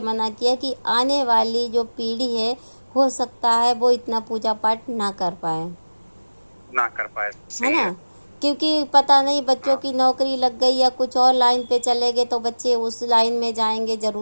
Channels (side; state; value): both; inverted; correlation -1.00